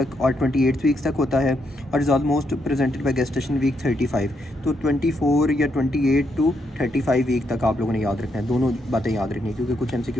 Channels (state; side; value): normal; both; correlation 0.78